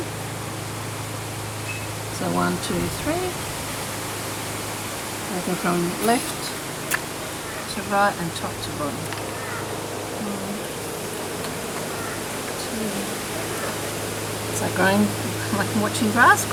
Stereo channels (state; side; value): identical; both; correlation 1.00